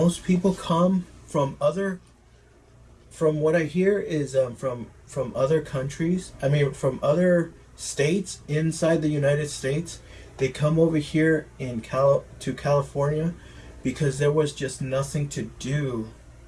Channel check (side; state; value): both; identical; correlation 1.00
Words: come from from what I hear is from other countries. I mean, from other states inside the United States. They come over here to California because there was just nothing to do